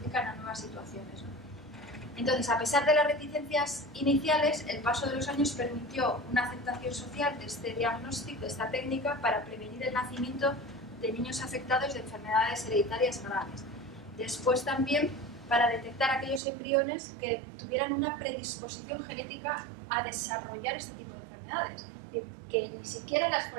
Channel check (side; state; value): left; drops out; at 16.4 s